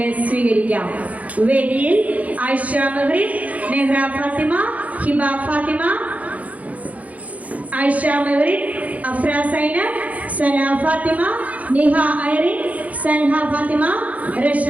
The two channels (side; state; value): left; late; 0.070 ms